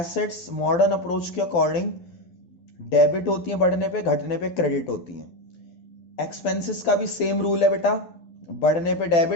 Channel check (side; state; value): right; late; 12 ms